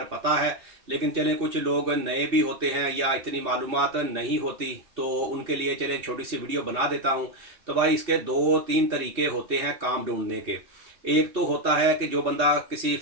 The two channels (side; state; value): left; late; 2.6 ms